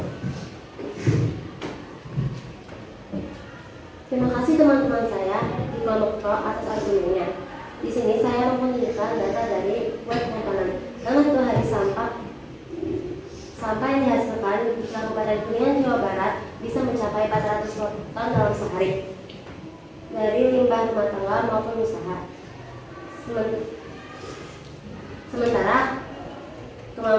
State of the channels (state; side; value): identical; both; correlation 1.00